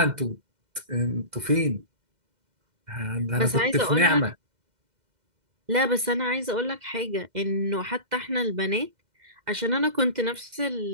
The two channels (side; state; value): left; late; 2.1 ms